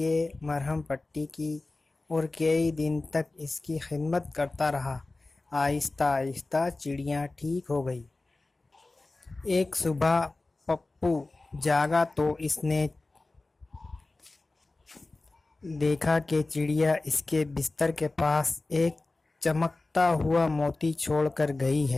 مرہم پٹی کی اور کئی دن تک اس کی خدمت کرتا رہا۔ آہستہ آہستہ چڑیا ٹھیک ہو گئی۔ ایک صبح پپو جاگا تو اس نے دیکھا کہ چڑیا اس کے بستر کے پاس ایک چمکتا ہوا موتی چھوڑ کر گئی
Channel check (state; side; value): quieter; right; 3.2 dB